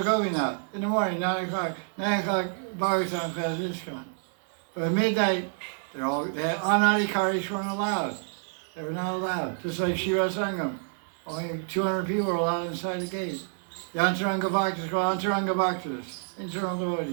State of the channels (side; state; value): left; silent; 55 dB below the other